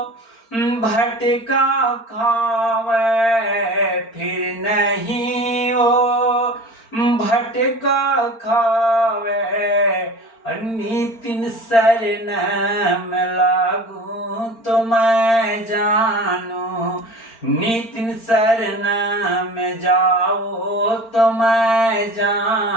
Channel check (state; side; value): late; right; 4.4 ms